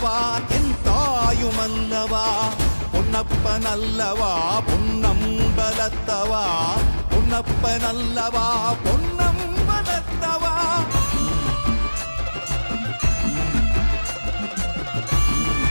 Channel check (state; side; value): inverted; both; correlation -1.00